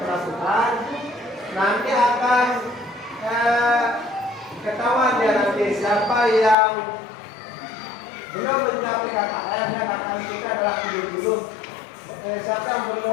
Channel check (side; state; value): right; drops out; at 6.6 s